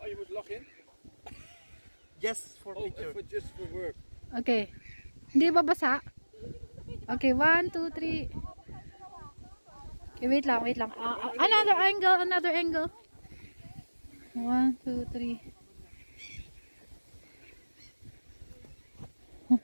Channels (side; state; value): both; inverted; correlation -1.00